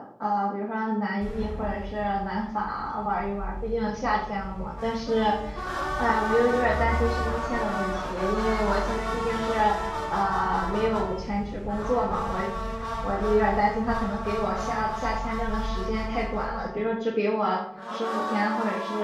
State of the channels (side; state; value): both; identical; correlation 1.00